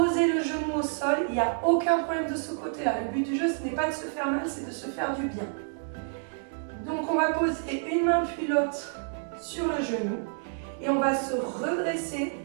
le genou au sol. Il n'y a aucun problème de ce côté-là. Le but du jeu, ce n'est pas de se faire mal, c'est de se faire du bien. Donc on va poser une main puis l'autre sur le genou et on va se redresser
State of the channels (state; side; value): silent; left; digital silence